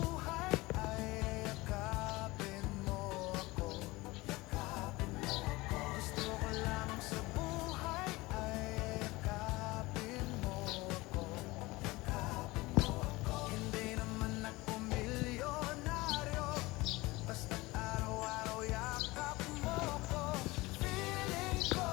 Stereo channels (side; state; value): right; quieter; 21.3 dB